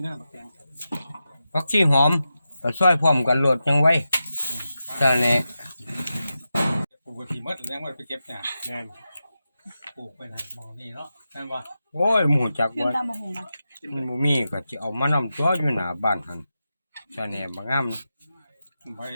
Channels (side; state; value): both; inverted; correlation -0.91